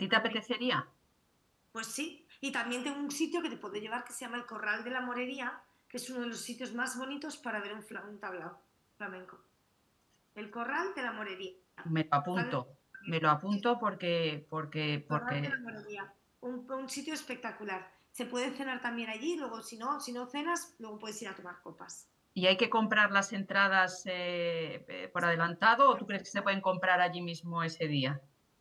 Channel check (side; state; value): both; identical; correlation 1.00